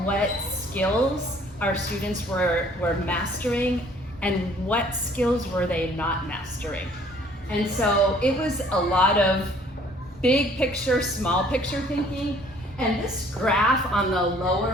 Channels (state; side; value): normal; both; correlation 0.57